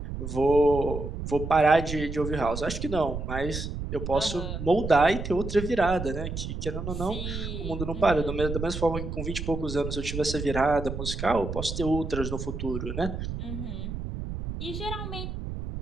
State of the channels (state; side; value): noise; right; rumble, 6 dB below the sound